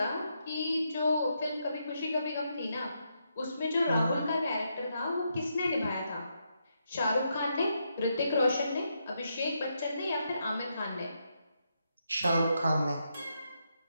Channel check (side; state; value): both; inverted; correlation -0.80